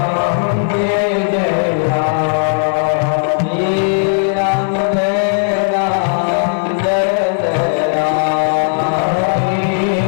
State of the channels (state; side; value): silent; right; digital silence